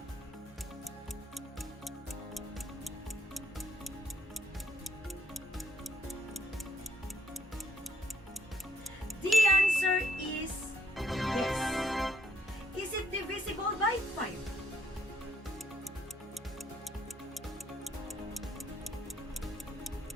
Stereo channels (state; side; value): normal; both; correlation 0.68